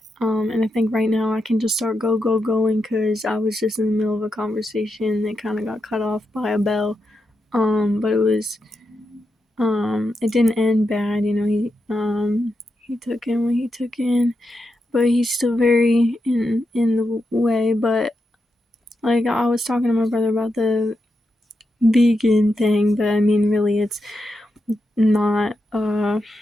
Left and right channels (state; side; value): normal; both; correlation 0.86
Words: And I think right now I can just start going because I was just in the middle of a conversation that kind of got cut off by a bell. But it didn't end bad. He took in what he took in, but he's still very in the way. But like I was talking to my brother about the vegan thing, but I mean really it's not